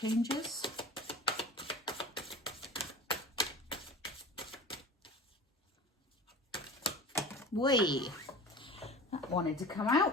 That wanted to come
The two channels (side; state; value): both; normal; correlation 0.37